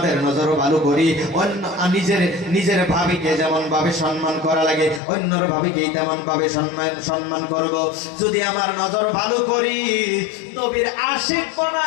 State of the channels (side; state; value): right; drops out; at 5.0 s